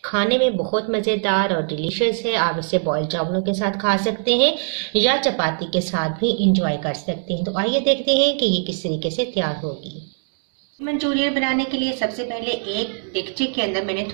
खाने में बहुत मज़ेदार और डिलीशियस है। आप इसे बॉयल चावलों के साथ खा सकते हैं या चपाती के साथ भी इंजॉय कर सकते हैं। तो आइए देखते हैं कि ये किस तरीके से तैयार होगी। मंचूरियन बनाने के लिए सबसे पहले एक देगचे के अंदर मैंने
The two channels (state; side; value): silent; left; digital silence